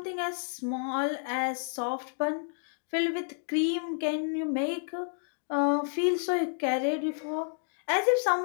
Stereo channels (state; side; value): silent; right; digital silence